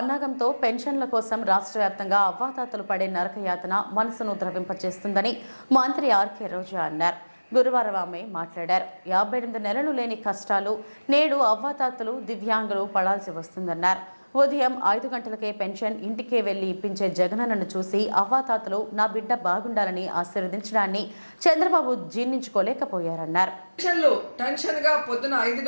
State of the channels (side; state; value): both; inverted; correlation -1.00